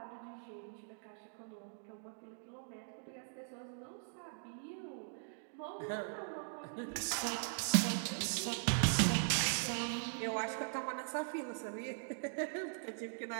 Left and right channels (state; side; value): silent; left; digital silence